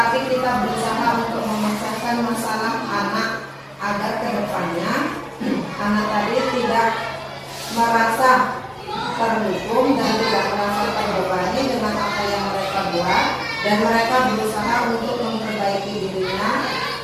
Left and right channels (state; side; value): identical; both; correlation 1.00